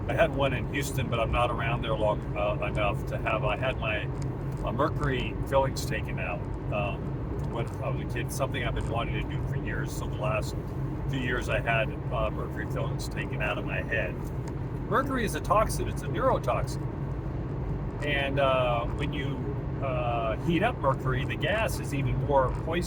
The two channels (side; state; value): both; identical; correlation 1.00